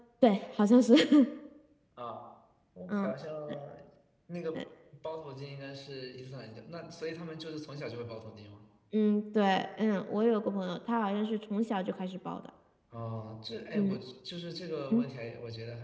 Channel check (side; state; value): both; identical; correlation 1.00